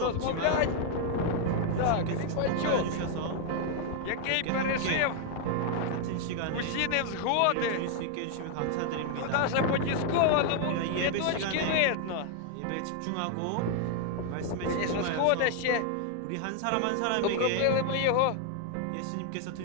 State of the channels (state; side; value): different; both; correlation 0.00